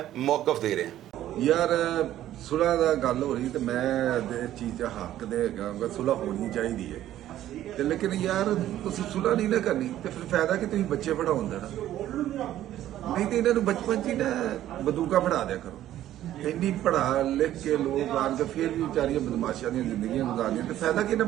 मौक़िफ़ दे रहे हैं। ਯਾਰ ਸੁਲ੍ਹਾ ਦਾ ਗੱਲ ਹੋ ਰਹੀ ਤੇ ਮੈਂ ਇਸ ਚੀਜ਼ 'ਚ ਹੱਕ ਦੇ ਹੈਗਾ, ਸੁਲ੍ਹਾ ਹੋਣੀ ਚਾਹੀਦੀ ਹੈ ਤੇ ਲੇਕਿਨ ਯਾਰ ਤੁਸੀਂ ਸੁਲ੍ਹਾ ਨਹੀਂ ਨਾ ਕਰਨੀ ਤੇ ਫਿਰ ਫਾਇਦਾ ਕਿ ਤੁਸੀਂ ਬੱਚੇ ਪੜਾਉਣ ਦੇਣਾ। ਨਹੀਂ ਤੇ ਇਹਨਾਂ ਨੂੰ ਬਚਪਨ 'ਚ ਹੀ ਨਾ ਬੰਦੂਕਾਂ ਪੜਾ ਦਿਆ ਕਰੋ। ਇੰਨੀ ਪੜਾ ਲਿਖ ਕੇ ਲੋਕ ਆਣ ਕੇ ਫਿਰ ਵੀ ਵਿਚਾਰੀਆਂ ਬਦਮਾਸ਼ਾਂ ਦੀਆਂ ਜ਼ਿੰਦਗੀਆਂ ਗੁਜ਼ਾਰਨੀਆਂ ਤੇ ਫਾਇਦਾ ਕਿ ਇਹਨਾਂ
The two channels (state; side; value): quieter; left; 12.8 dB